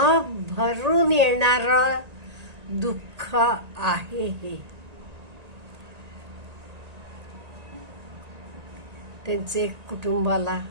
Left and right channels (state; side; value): late; left; 1.8 ms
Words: भरून येणारं दुःख आहे हे. त्यांचे कुटुंबाला